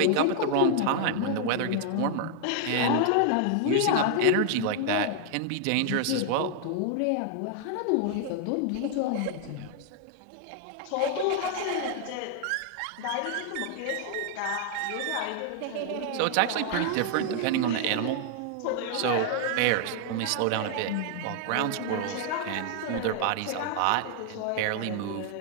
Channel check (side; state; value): both; different; correlation 0.00